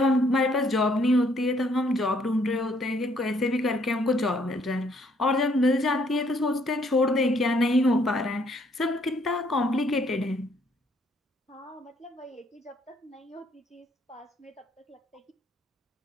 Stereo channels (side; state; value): both; normal; correlation 0.67